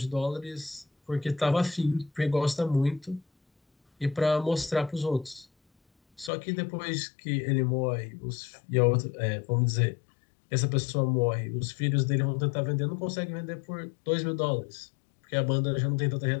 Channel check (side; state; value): right; drops out; at 6.3 s